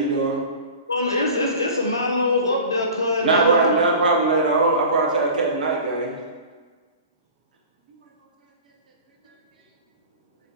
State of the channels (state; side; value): inverted; both; correlation -0.39